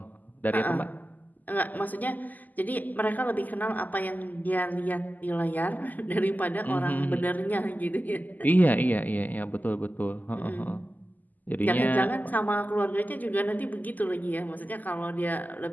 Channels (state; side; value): late; right; 0.082 ms